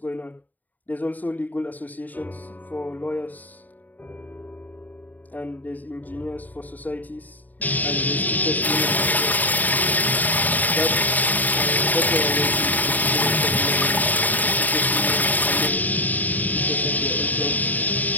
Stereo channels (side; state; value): right; late; 0.083 ms